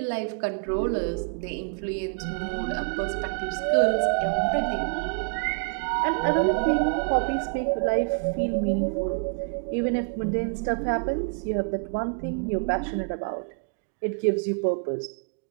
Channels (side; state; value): left; quieter; 38.3 dB